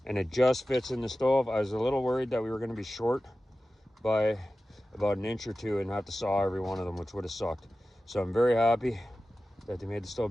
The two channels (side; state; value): both; normal; correlation 0.95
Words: and it just fits in the stove. I was a little worried that we were going to be short by about an inch or two and have to saw every one of them, which would have sucked. So I'm very happy that they made the